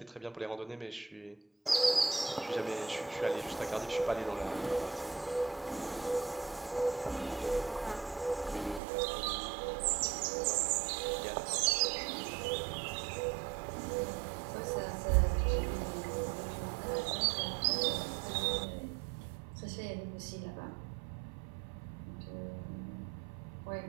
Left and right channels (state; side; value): drops out; left; at 8.8 s